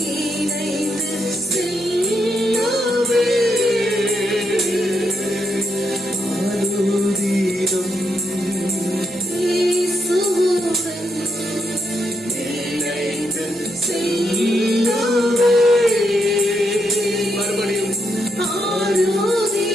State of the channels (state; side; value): normal; both; correlation 0.81